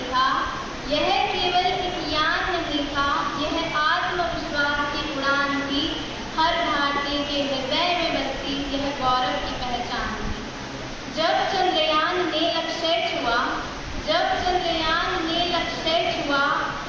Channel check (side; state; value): both; identical; correlation 1.00